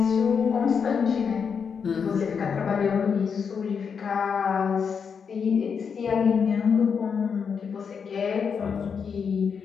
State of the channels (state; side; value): quieter; right; 6.4 dB